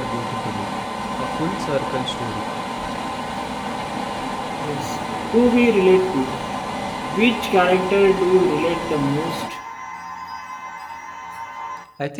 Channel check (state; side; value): identical; both; correlation 1.00